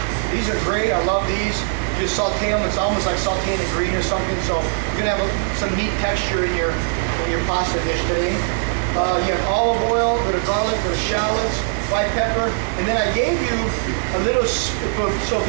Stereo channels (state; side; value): silent; left; 65 dB below the other